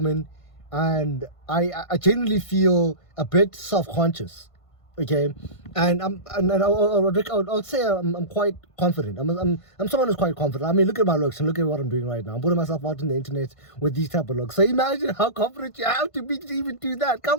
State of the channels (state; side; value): late; right; 1.5 ms